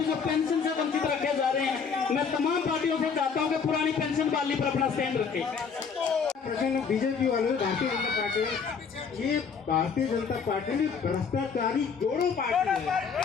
जो पेंशन से वंचित रखे जा रहे हैं, मैं तमाम पार्टियों से चाहता हूं कि पुरानी पेंशन बहाली पर अपना स्टैंड रखें। बीजेपी वाले भारतीय जनता पार्टी, ये भारतीय जनता पार्टी में भ्रष्टाचारी जोड़ों पार्टी है।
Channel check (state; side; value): quieter; right; 6.0 dB